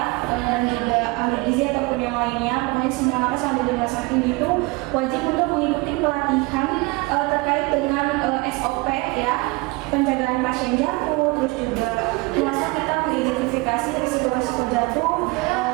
dan juga ahli gizi ataupun yang lainnya, pokoknya semua nakes yang ada di rumah sakit itu wajib untuk mengikuti pelatihan terkait dengan SOP ya, penjagaan pasien jatuh, terus juga rumah sakit kita mengidentifikasi risiko-risiko jatuh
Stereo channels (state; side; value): quieter; left; 24.3 dB